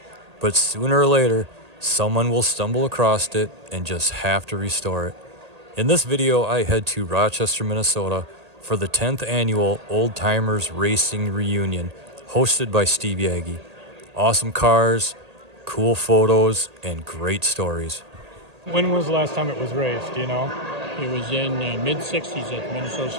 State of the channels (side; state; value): left; late; 1.8 ms